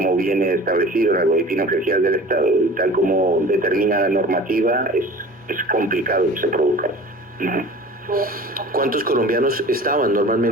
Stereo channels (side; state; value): both; normal; correlation 0.41